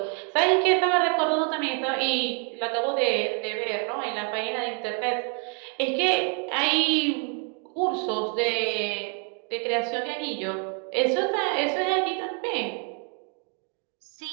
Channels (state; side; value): quieter; left; 39.2 dB